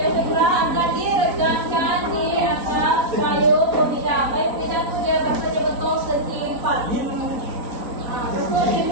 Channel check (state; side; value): late; left; 4.0 ms